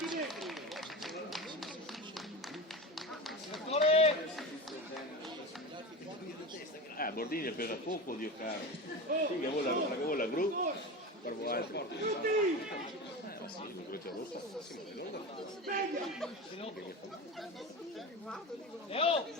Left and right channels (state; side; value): normal; both; correlation 0.26